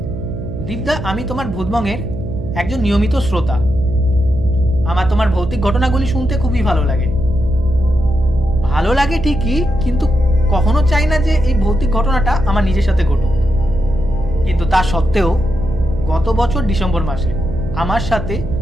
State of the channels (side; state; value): right; noise; hum, 9 dB below the sound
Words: দীপদা, আমি তোমার ভূতবংয়ের একজন নিয়মিত শ্রোতা। আমার তোমার ভৌতিক ঘটনাগুলি শুনতে খুবই ভালো লাগে। ভালো লাগে ঠিকই, কিন্তু কখনো চাই না যে এই ভৌতিক ঘটনাটা আমার নিজের সাথে ঘটুক। কিন্তু তা সত্ত্বেও গত বছর ডিসেম্বর মাসে আমার সাথে